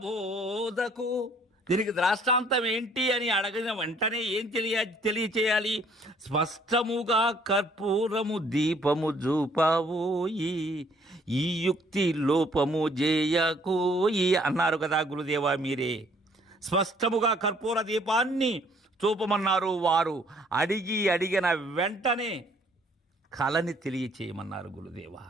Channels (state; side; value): normal; both; correlation 0.62